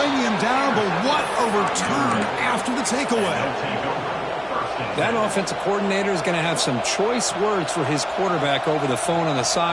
him down, but what a return after the takeaway. That offensive coordinator is going to have some choice words for his quarterback over the phone on the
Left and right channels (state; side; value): identical; both; correlation 1.00